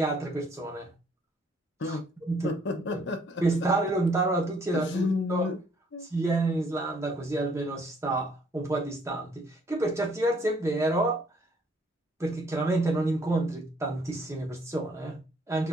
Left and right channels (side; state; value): both; normal; correlation 0.64